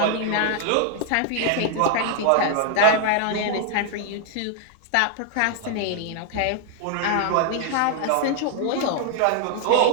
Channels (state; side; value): different; both; correlation 0.00